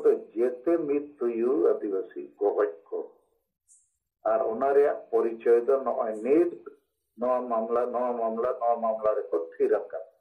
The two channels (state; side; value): identical; both; correlation 1.00